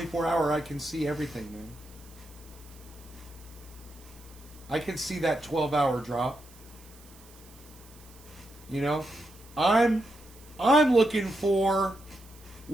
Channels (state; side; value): noise; right; hiss, 23 dB below the sound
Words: I can see everything, man. I can see that 12-hour drop. You know? I'm looking for